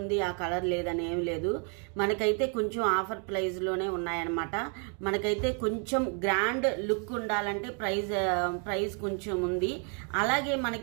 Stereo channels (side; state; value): left; quieter; 39.9 dB